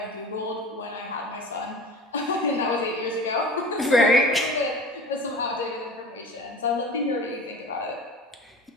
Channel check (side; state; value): both; normal; correlation 0.37